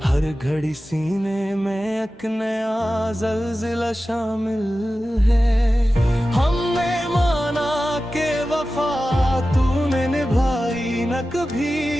हर घड़ी सीने में एक नया ज़ल्ज़ला शामिल है। हमने माना के वफा तूने निभाई न कभी,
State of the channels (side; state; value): both; normal; correlation 0.94